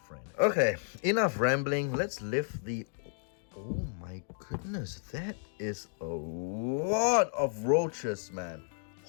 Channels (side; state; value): right; silent; digital silence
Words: Okay, enough rambling. Let's lift the... Oh my goodness, that is a lot of roaches, man.